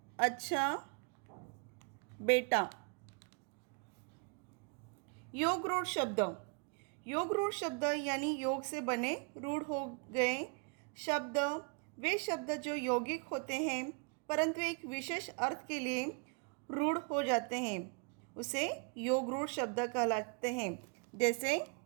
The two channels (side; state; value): left; quieter; 35.7 dB